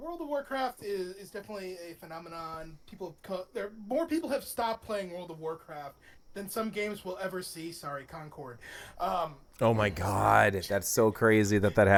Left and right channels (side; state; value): both; identical; correlation 1.00